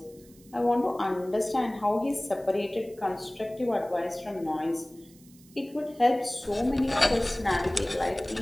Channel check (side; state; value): right; noise; hiss, 26 dB below the sound